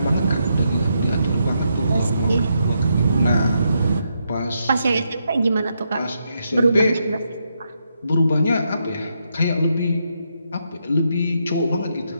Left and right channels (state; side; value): inverted; both; correlation -0.80